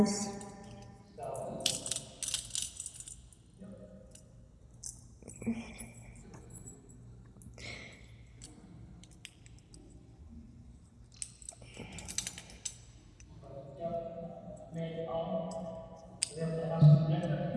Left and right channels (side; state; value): both; identical; correlation 1.00